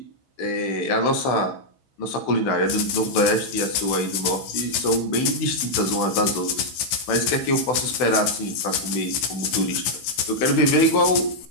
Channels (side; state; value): right; late; 16 ms